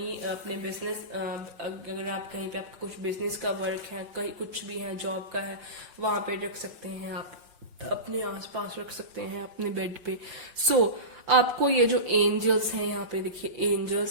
अपने बिजनेस, अगर आप कहीं पे आपका कुछ बिजनेस का वर्क है, कहीं कुछ भी है, जॉब का है, वहां पे रख सकते हैं, आप अपने आसपास रख सकते हैं, अपने बेड पे। सो आपको ये जो एंजल्स हैं, यहाँ पे देखिए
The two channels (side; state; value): left; late; 5.4 ms